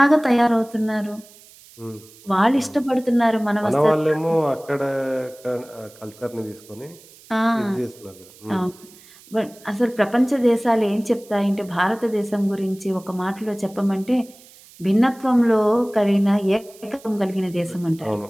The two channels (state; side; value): noise; right; hiss, 24 dB below the sound